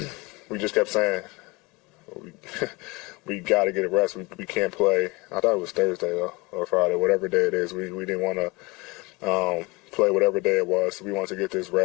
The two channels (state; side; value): quieter; right; 24.8 dB